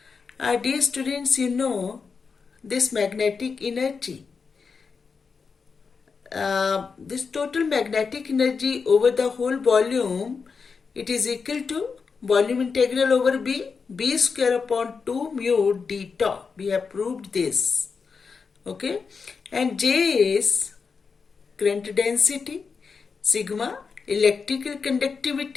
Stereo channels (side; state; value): right; quieter; 5.3 dB